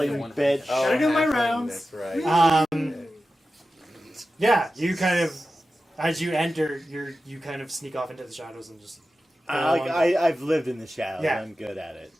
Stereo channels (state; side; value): normal; both; correlation 0.93